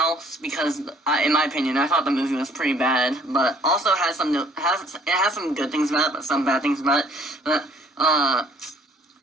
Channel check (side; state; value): both; normal; correlation 0.58